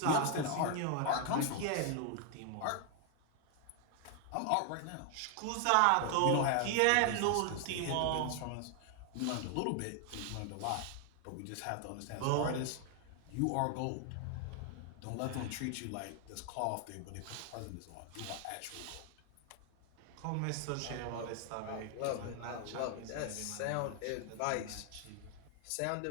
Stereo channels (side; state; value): both; different; correlation 0.00